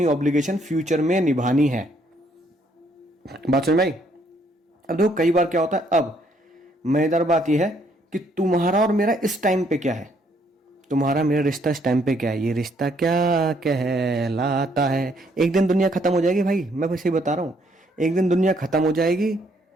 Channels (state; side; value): normal; both; correlation 0.68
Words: ऑब्लिगेशन फ्यूचर में निभानी है। बात समझ में आई? अब देखो कई बार क्या होता है, अब मजेदार बात यह है कि तुम्हारा और मेरा इस टाइम पे क्या है, तुम्हारा मेरा रिश्ता इस टाइम पे क्या है, ये रिश्ता क्या कहलाता है। एक दिन दुनिया खत्म हो जाएगी भाई, मैं बस ये बता रहा हूं, एक दिन दुनिया खत्म हो जाएगी।